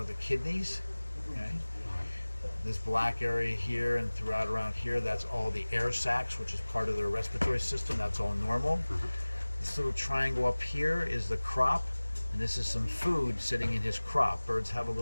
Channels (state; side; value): inverted; both; correlation -1.00